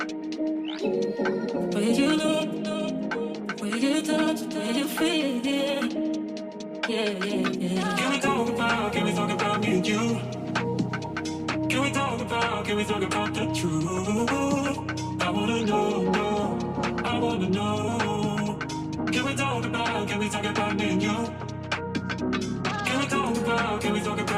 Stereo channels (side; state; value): both; identical; correlation 1.00